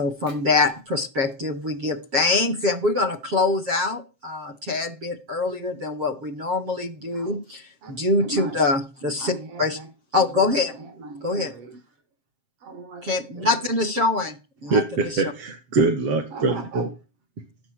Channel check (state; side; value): late; left; 7.5 ms